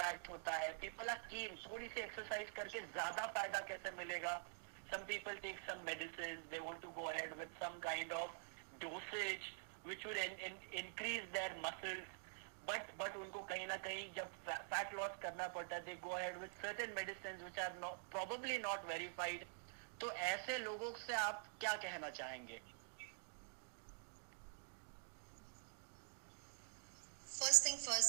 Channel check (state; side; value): silent; left; digital silence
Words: होता है. पीपल आर कीन थोड़ी सी एक्सरसाइज करके ज्यादा फायदा कैसे मिलेगा. Some people take some medicine, they want to go ahead with some kind of dosage which would increase their muscles. But उनको कहीं ना कहीं जब फैट लॉस करना पड़ता है, they go ahead with certain medicine which are probably not verified. तो ऐसे लोगों से आप क्या कहना चाहेंगे? First thing